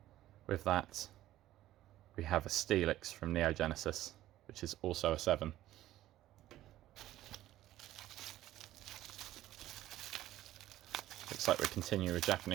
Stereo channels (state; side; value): quieter; left; 14.4 dB